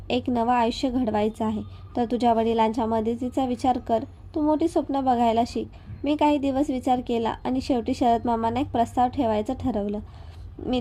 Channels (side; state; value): both; identical; correlation 1.00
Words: एक नवं आयुष्य घडवायचं आहे, तर तुझ्या वडिलांच्या मदतीचा विचार कर. तू मोठी स्वप्न बघायला शिक. मी काही दिवस विचार केला आणि शेवटी शरद मामांना एक प्रस्ताव ठेवायचं ठरवलं. मी